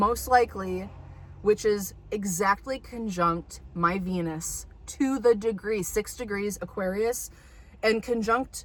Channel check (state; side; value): identical; both; correlation 1.00